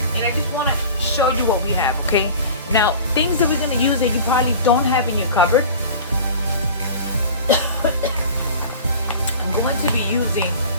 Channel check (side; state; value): both; inverted; correlation -0.39